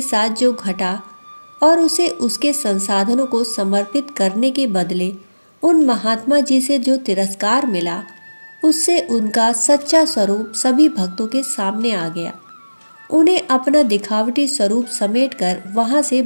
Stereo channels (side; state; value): both; inverted; correlation -1.00